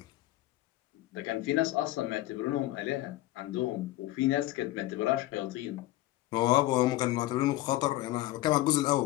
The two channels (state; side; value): quieter; right; 16.6 dB